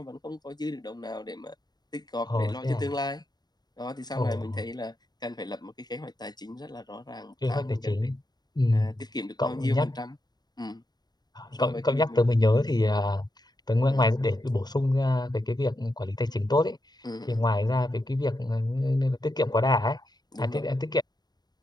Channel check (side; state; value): right; late; 0.20 ms